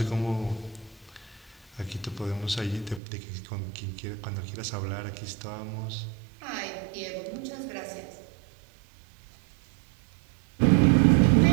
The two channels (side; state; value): left; drops out; at 3.0 s